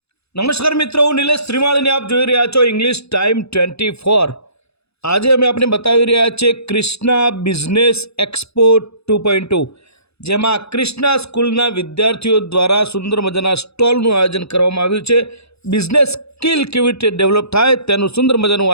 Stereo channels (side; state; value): right; late; 0.79 ms